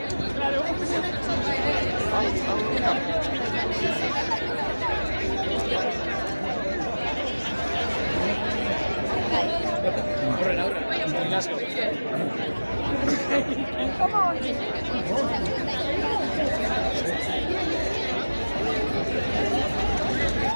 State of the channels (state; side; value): inverted; both; correlation -1.00